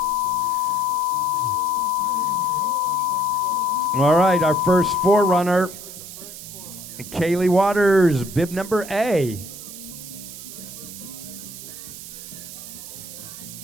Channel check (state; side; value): noise; right; hiss, 12 dB below the sound